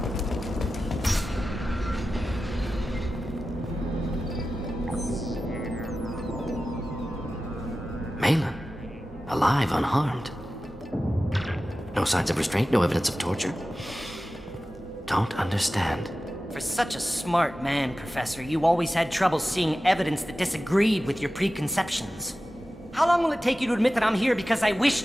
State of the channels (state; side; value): normal; both; correlation 0.94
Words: Malin. Alive, unharmed. No signs of restraint, no evidence of torture. Don't understand. For such a smart man, Professor, you always had trouble seeing evidence that disagreed with your preconceptions. How long will it take you to admit that I'm here because I wish